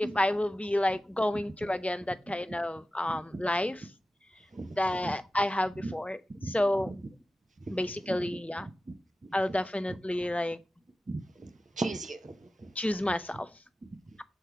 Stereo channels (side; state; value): both; normal; correlation 0.94